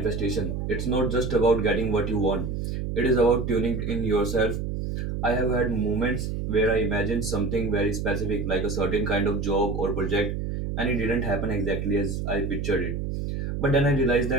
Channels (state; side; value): noise; right; hum, 3 dB below the sound